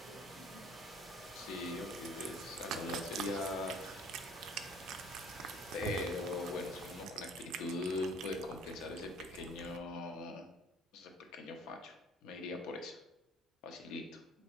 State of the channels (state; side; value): normal; both; correlation 0.53